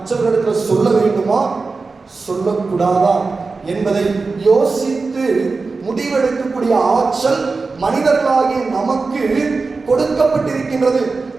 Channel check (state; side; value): quieter; left; 4.1 dB